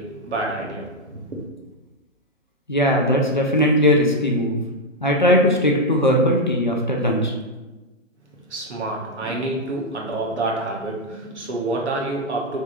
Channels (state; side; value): normal; both; correlation 0.03